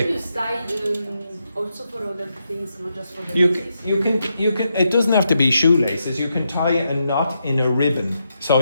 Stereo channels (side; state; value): both; inverted; correlation -0.83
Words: Also for other things, not just for the You can, it doesn't have to be shoelaces. You can tie a knot in a ribbon. So,